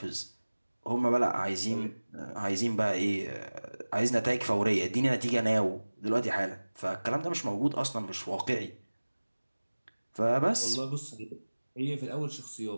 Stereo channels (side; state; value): both; inverted; correlation -1.00